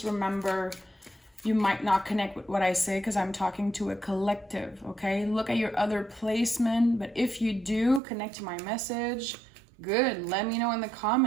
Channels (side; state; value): left; drops out; at 8.0 s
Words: remember you might not connect with what I say because I'm talking to a collective, okay? Look at your other placement, but if you do connect to my message, good. Let me know in the